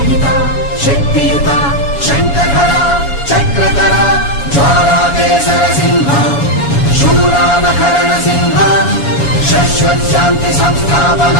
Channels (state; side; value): late; right; 7.1 ms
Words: शक्तियुता शङ्खधरा चक्रधरा ज्वालाकेसर सिंह शूरानकरण सिंह शाश्वत शांति